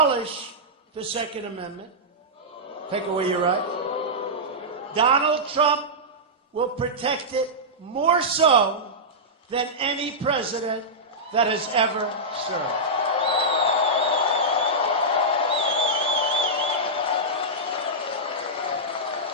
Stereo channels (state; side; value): normal; both; correlation -0.12